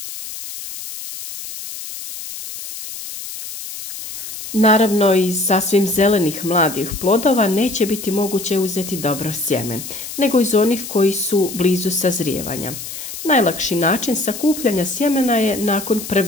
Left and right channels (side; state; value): left; noise; hiss, 10 dB below the sound